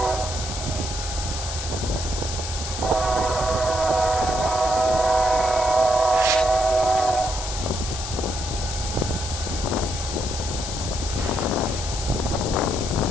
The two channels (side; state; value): left; noise; hiss, 6 dB below the sound